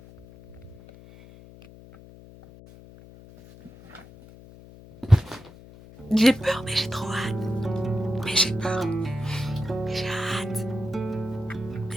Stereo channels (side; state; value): left; noise; hum, 20 dB below the sound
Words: J'ai peur, mais j'ai trop hâte. Mais j'ai peur. Mais j'ai hâte.